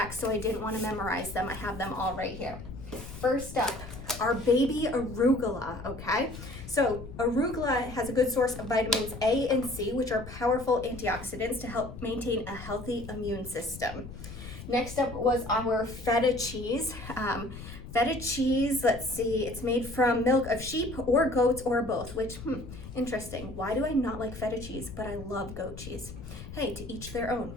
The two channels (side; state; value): left; noise; rumble, 12 dB below the sound